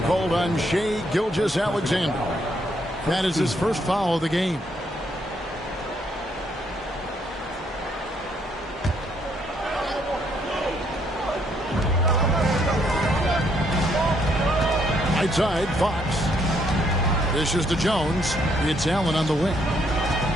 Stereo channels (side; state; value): both; normal; correlation 0.71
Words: called on Shai Gilgeous-Alexander. That is his first foul of the game. Right side, Fox. Dishes to Jones. It's Allen on the wing.